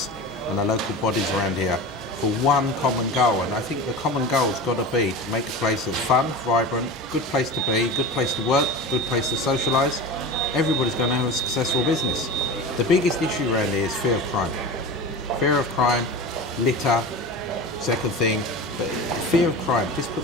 and the local bodies around here for one common goal, and I think the common goal has got to be to make a place that's fun, vibrant, good place to be, good place to work, good place to socialise. Everybody's going to have a successful business. The biggest issue around here is fear of crime. Fear of crime, litter, second thing, but fear of crime just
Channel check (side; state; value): both; normal; correlation 0.30